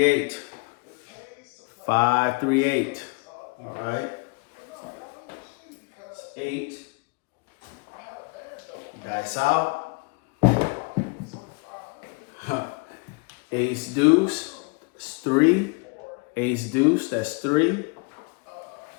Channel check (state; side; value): quieter; right; 30.6 dB